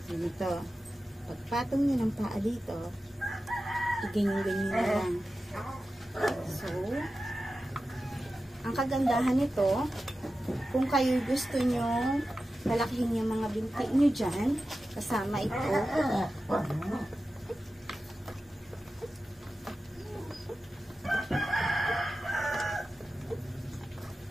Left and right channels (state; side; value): normal; both; correlation 0.93